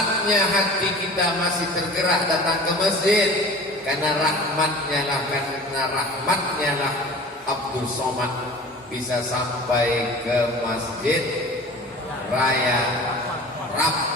hati kita masih tergerak datang ke masjid. Karena rahmatnya lah Abdul Somad bisa sampai ke Masjid Raya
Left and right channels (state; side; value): normal; both; correlation 0.40